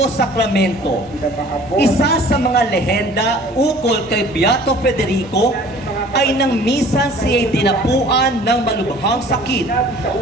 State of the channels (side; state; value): both; normal; correlation 0.49